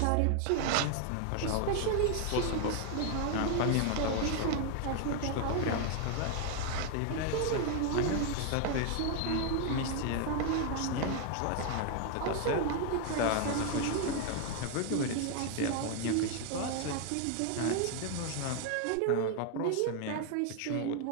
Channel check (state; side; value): different; both; correlation 0.00